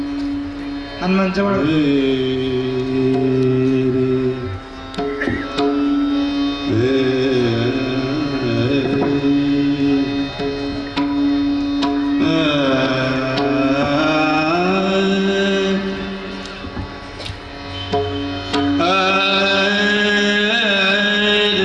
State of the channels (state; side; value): identical; both; correlation 1.00